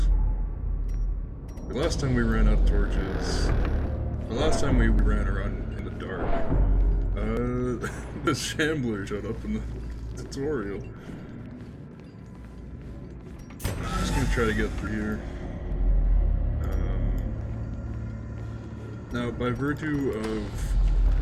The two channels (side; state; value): both; identical; correlation 1.00